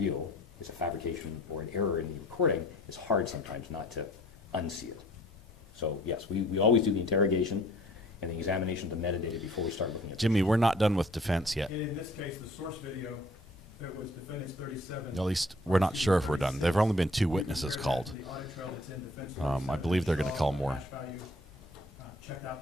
It's a fabrication or an error in the recording. It's hard sometimes not to unsee it. So yes, we always do the interrogation and the examination of the metadata before we start looking at Jimmy, we're not done with defense yet. In this case, the source video, that was defendants 37. At least we're not sure if we're done. There've only been 2 witnesses called. I believe they're going to call more. Checked out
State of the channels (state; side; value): normal; both; correlation 0.55